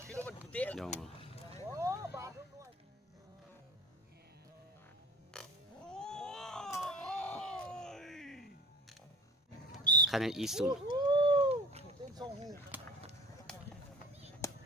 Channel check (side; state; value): both; normal; correlation 0.43